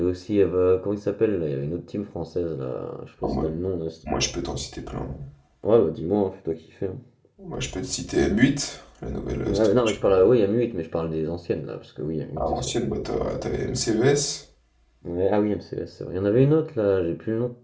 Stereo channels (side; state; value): both; identical; correlation 1.00